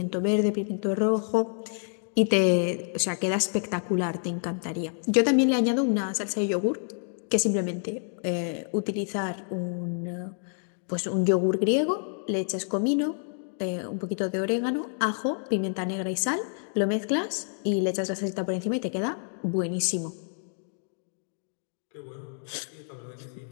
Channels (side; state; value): right; silent; 59 dB below the other